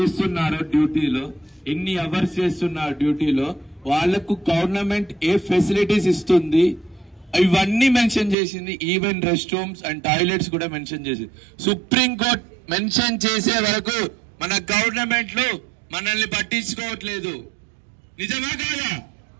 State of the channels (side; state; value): left; drops out; at 8.3 s